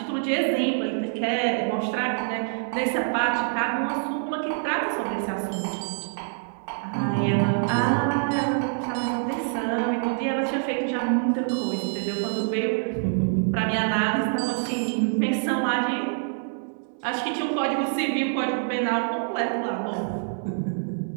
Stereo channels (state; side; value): silent; left; 61 dB below the other